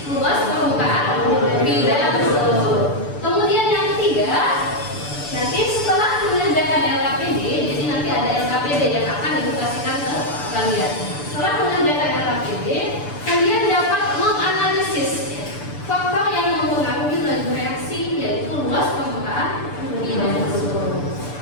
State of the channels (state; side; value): late; right; 6.9 ms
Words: Luas permukaan bidang sentuh. Kemudian yang ketiga, nanti setelah mengerjakan LKPD, jadi nanti ada LKPD yang akan dikasihkan ke kalian. Setelah mengerjakan LKPD, kalian dapat menganalisis faktor yang mempengaruhi laju reaksi, yaitu luas permukaan bidang sentuh.